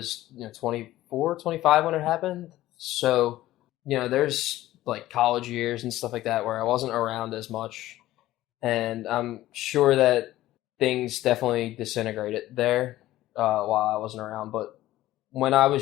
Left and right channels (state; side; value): quieter; right; 15.4 dB